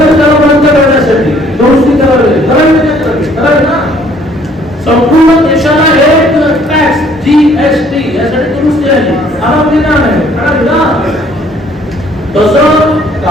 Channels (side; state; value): both; normal; correlation 0.61